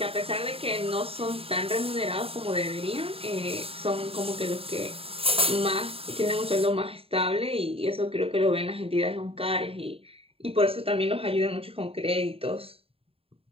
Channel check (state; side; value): late; left; 0.27 ms